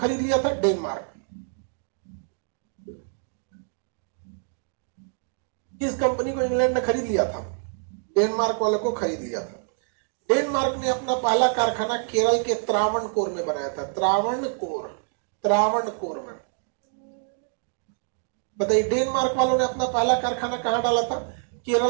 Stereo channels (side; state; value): left; silent; 61 dB below the other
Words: लिया था, डेनमार्क। किस कंपनी को इंग्लैंड ने खरीद लिया था, डेनमार्क वाले को खरीद लिया था। डेनमार्क ने अपना पहला कारखाना केरल के त्रावणकोर में बनाया था, त्रावणकोर, त्रावणकोर में। बताइए डेनमार्क वालों ने अपना पहला कारखाना कहां डाला था,